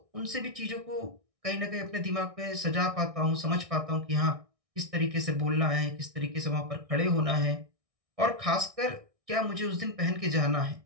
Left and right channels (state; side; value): late; left; 1.6 ms